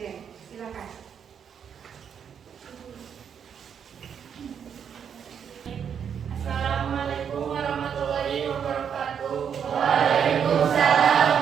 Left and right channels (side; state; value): left; quieter; 7.8 dB